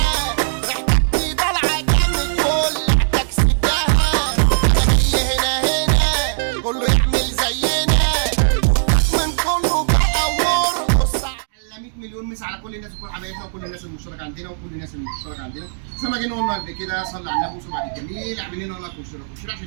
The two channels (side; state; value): left; silent; digital silence